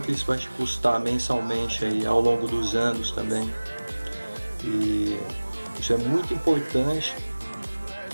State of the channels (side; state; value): both; inverted; correlation -1.00